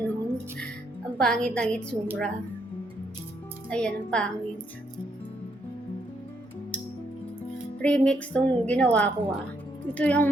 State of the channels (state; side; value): normal; both; correlation 0.75